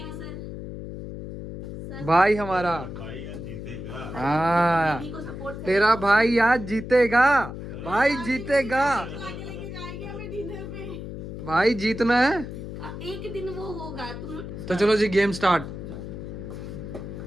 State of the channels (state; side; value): noise; left; hum, 9 dB below the sound